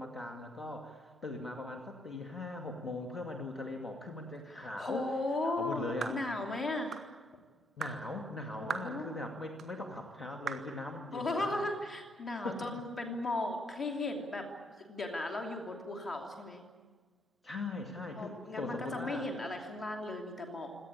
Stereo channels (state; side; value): normal; both; correlation 0.71